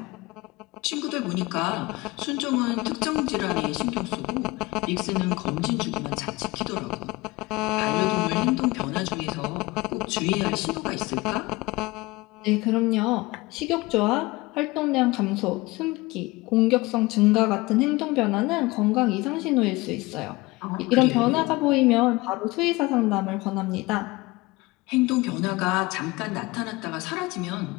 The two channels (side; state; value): right; quieter; 22.2 dB